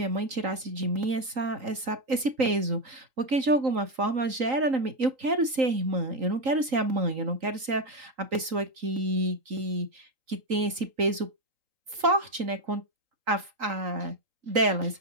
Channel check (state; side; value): late; left; 3.8 ms